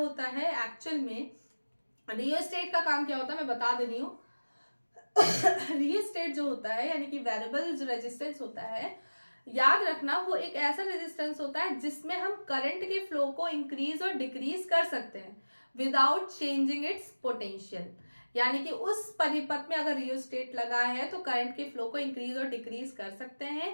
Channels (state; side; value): inverted; both; correlation -1.00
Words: है, एक्चुअल में रियोस्टेट का काम क्या होता है मैं बता दे रही हूँ। रियोस्टेट जो होता है यानी कि वेरिएबल जो रेजिस्टेंस होता है, याद रखना वो एक ऐसा रेजिस्टेंस होता है जिसमें हम करंट के फ्लो को इंक्रीज और डिक्रीज कर सकते हैं विदाउट चेंजिंग इट्स पोटेंशियल। यानी कि उस परिपथ में अगर रियोस्टेट लगा है तो करंट के फ्लो को इंक्रीज और डिक्रीज कर सकते